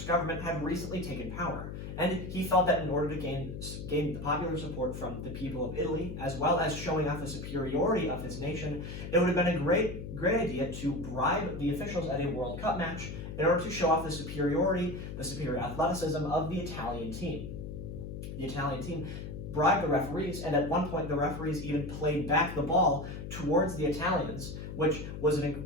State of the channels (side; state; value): left; noise; hum, 8 dB below the sound